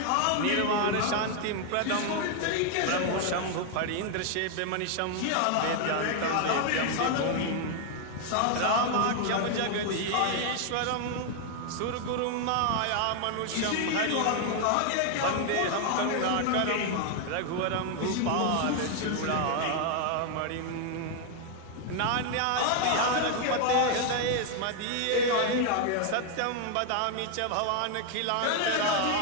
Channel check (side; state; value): both; different; correlation 0.00